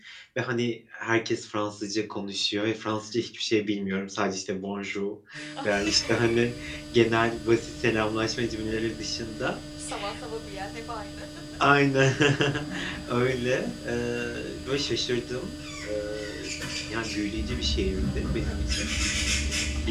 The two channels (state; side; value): identical; both; correlation 1.00